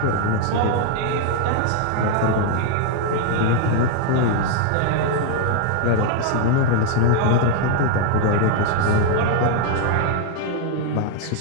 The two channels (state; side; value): different; both; correlation 0.01